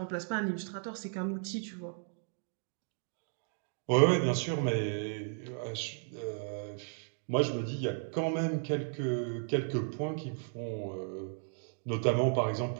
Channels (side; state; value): left; silent; 55 dB below the other